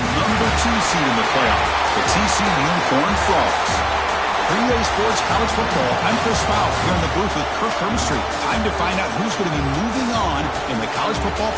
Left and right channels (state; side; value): identical; both; correlation 1.00